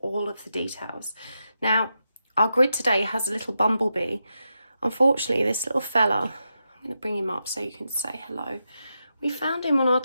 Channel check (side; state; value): both; inverted; correlation -0.86